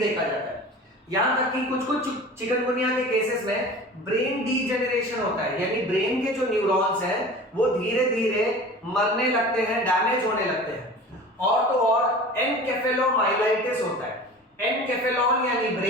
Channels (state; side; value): normal; both; correlation 0.39